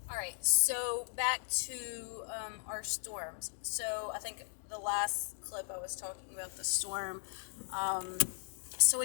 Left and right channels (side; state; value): right; silent; digital silence